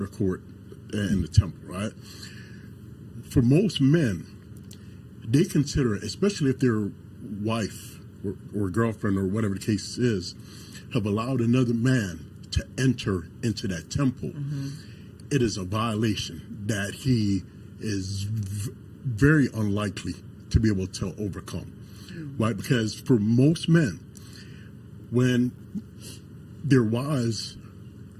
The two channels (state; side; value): identical; both; correlation 1.00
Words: court, and the temple, right? For most men, they consider, especially if their wife or girlfriend or whatever the case is, have allowed another man to enter into that temple, it is a violation that he is very unlikely to be able to overcome, right? Because for most men, when their wives,